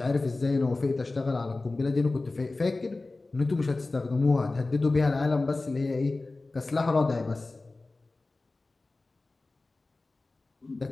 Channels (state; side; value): quieter; right; 3.3 dB